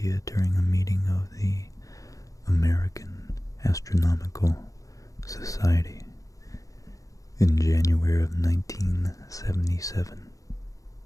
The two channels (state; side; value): late; right; 0.16 ms